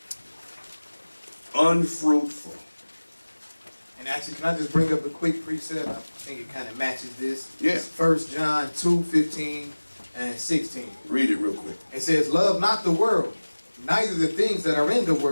Unfruitful. And actually, can I just bring up a quick precept? I think it kind of matches this. Yeah. It's 1 John 2, 15 and 16. Read it real quick. It says, love not the world, neither the things that are in the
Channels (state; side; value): inverted; both; correlation -1.00